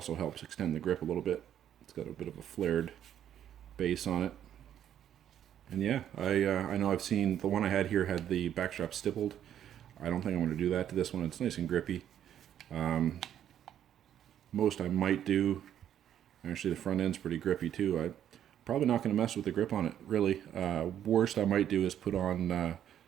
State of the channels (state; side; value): quieter; left; 10.3 dB